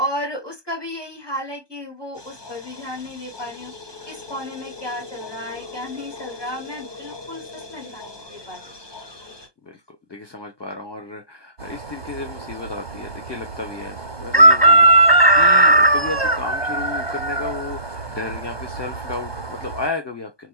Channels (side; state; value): right; late; 1.2 ms